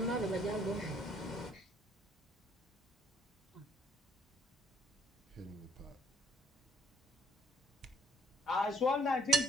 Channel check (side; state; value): both; normal; correlation 0.64